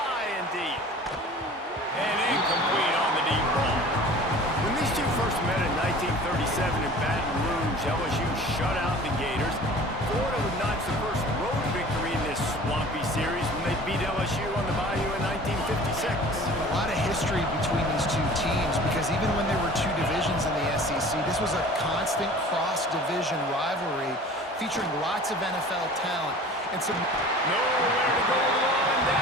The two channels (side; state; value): both; normal; correlation 0.44